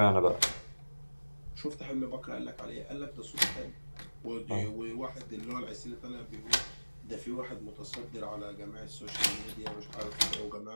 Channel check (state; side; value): inverted; both; correlation -1.00